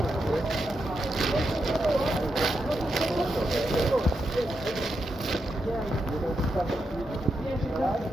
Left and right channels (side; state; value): both; normal; correlation 0.85